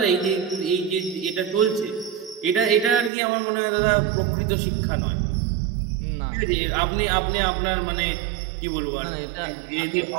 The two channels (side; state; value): left; drops out; at 3.1 s